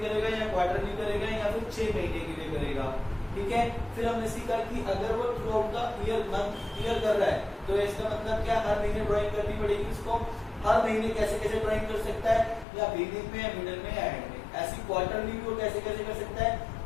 करेगा, या क्वार्टरली करेगा, या फिर 6 महीने के लिए करेगा। ठीक है। फिर हमने सीखा कि अगर वो थ्रू आउट द ईयर कर रहा है तो इसका मतलब क्या, हर महीने ड्राइंग करनी पड़ेगी उसको। हर महीने कैसे कैसे ड्राइंग कर सकता है, या बिगिनिंग में, या मिडिल में, या एंड में। ऐसी क्वार्टरली भी वो कैसे कैसे कर सकता है,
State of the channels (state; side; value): drops out; right; at 12.7 s